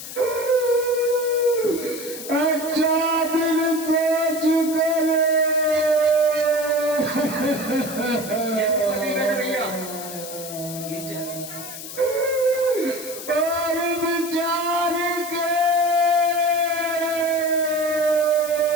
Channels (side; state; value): left; noise; hiss, 11 dB below the sound